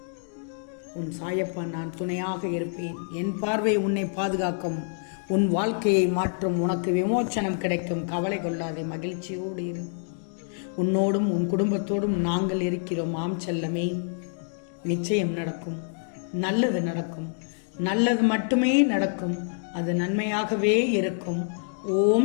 உன் சாயப்பா நான் துணையாக இருப்பேன். என் பார்வை உன்னை பாதுகாக்கும். உன் வாழ்க்கையை மாற்றும். உனக்கு விமோச்சனம் கிடைக்கும். கவலை கொள்ளாதே, மகிழ்ச்சியோடு இரு. உன்னோடும் உன் குடும்பத்தோடும் நாங்கள் இருக்கிறோம். ஆம் செல்லமே, நிச்சயம் நடக்கும். நல்லது நடக்கும். நல்லது மட்டுமே நடக்கும். அது நன்மையாகவே இருக்கும்.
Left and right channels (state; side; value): silent; right; 60 dB below the other